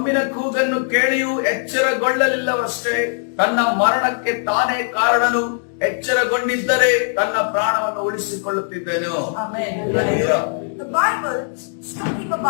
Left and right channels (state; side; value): silent; right; digital silence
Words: ಕೂಗನ್ನು ಕೇಳಿಯೂ ಎಚ್ಚರಗೊಳ್ಳಲಿಲ್ಲವಷ್ಟೇ, ತನ್ನ ಮರಣಕ್ಕೆ ತಾನೇ ಕಾರಣನು. ಎಚ್ಚರಗೊಂಡಿದ್ದರೆ ತನ್ನ ಪ್ರಾಣವನ್ನು ಉಳಿಸಿಕೊಳ್ಳುತ್ತಿದ್ದನು. Amen. The Bible is talking